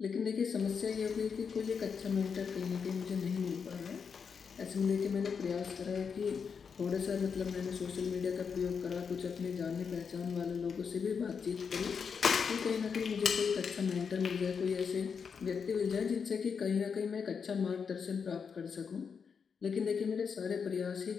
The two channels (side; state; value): right; quieter; 6.2 dB